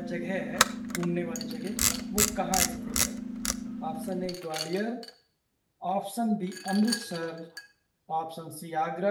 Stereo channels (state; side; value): identical; both; correlation 1.00